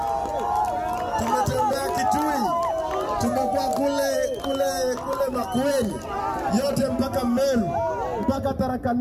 Tumetembea Kitui, tumekuwa kule Makueni, yote mpaka Meru, mpaka Tharaka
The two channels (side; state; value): both; identical; correlation 1.00